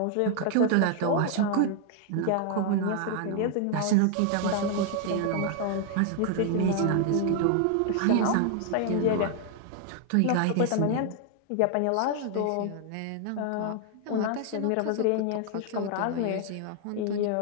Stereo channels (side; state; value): both; different; correlation 0.00